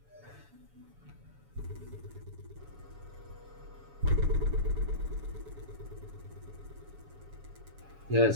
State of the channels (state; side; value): late; left; 7.1 ms